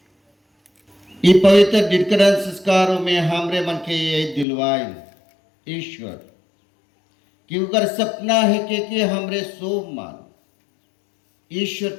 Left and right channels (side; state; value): right; drops out; at 4.5 s